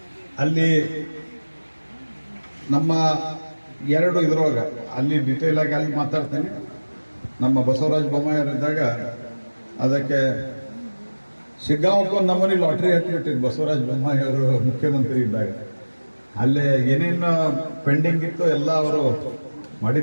ಅಲ್ಲಿ ನಮ್ಮ 2 ಇದ್ರೊಳಗೆ ಅಲ್ಲಿ ಡಿಟೇಲ್ ಆಗಿ ಅಲ್ಲಿ ಮಾತಾಡ್ತೇನೆ. ನಮ್ಮ ಬಸವರಾಜ ಬೊಮ್ಮಾಯಿಯವರಿದ್ದಾಗ ಅದಕ್ಕೆ ಶಿಗ್ಗಾಂವಕ್ಕೆ ಒಂದು ನಮೂನಿ ಲಾಟ್ರಿ ಹತ್ತಿಬಿಟ್ಟಿದ್ದು ಬಸವರಾಜ ಬೊಮ್ಮಾಯಿ ಅವರು ಮುಖ್ಯಮಂತ್ರಿ ಇದ್ದಾಗ. ಅಲ್ಲೇ ಏನೇನು ಪೆಂಡಿಂಗ್ ಇತ್ತು ಎಲ್ಲ ಅವರು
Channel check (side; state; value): both; inverted; correlation -1.00